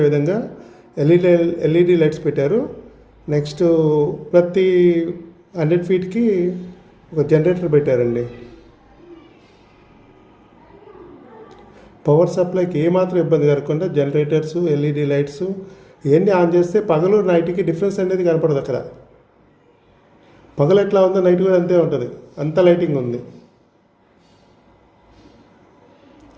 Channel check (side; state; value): both; identical; correlation 1.00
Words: విధంగా ఎల్ఈడి లైట్స్ పెట్టారు. నెక్స్ట్ ప్రతి 100 ఫీట్కి ఒక జనరేటర్ పెట్టారండి. పవర్ సప్లైకి ఏమాత్రం ఇబ్బంది కలగకుండా జనరేటర్స్, ఎల్ఈడి లైట్స్ ఇవన్నీ ఆన్ చేస్తే పగలు నైట్కి డిఫరెన్స్ అనేది కనపడదు. అక్కడ పగలు ఎట్లా ఉందో నైట్ కూడా అంతే ఉంటుంది, అంత లైటింగ్ ఉంది.